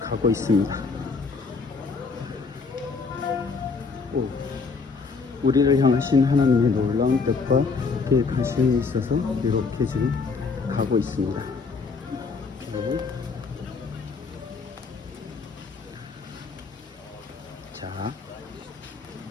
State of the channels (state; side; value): quieter; right; 4.6 dB